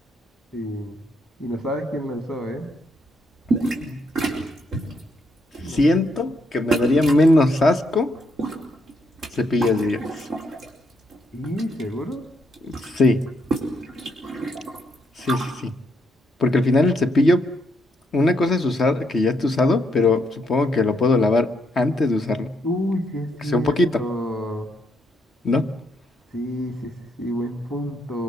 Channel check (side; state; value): both; normal; correlation 0.76